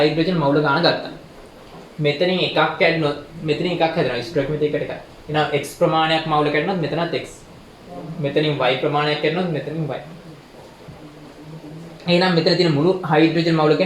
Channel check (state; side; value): identical; both; correlation 1.00